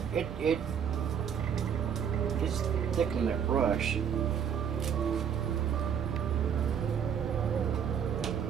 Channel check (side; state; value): left; quieter; 8.0 dB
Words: it's thickening that brush.